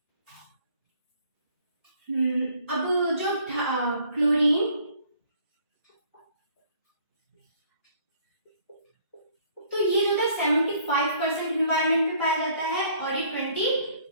अब जो क्लोरीन, तो ये जो था 75% एनवायरनमेंट में पाया जाता है और ये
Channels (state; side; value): inverted; both; correlation -0.60